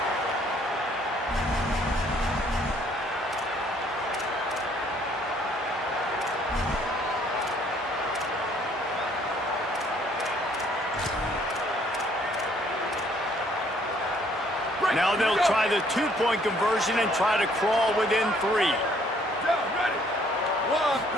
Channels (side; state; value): both; normal; correlation 0.63